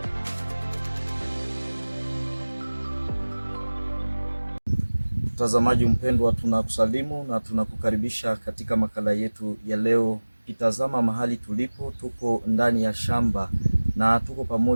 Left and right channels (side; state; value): both; inverted; correlation -1.00